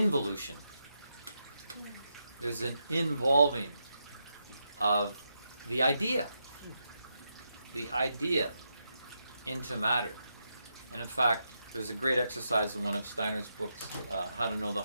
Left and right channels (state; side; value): inverted; both; correlation -0.84